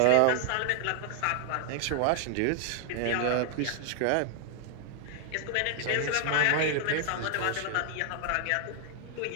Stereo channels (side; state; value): both; different; correlation 0.00